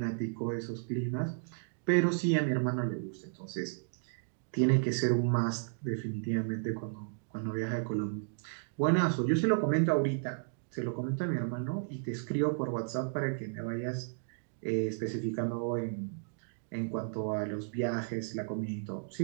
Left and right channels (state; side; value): silent; left; digital silence